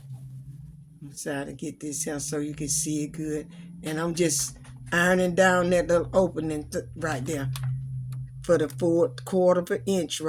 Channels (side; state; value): both; identical; correlation 1.00